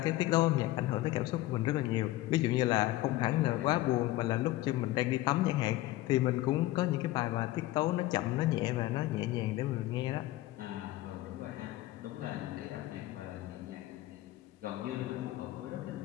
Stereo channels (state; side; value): quieter; right; 16.7 dB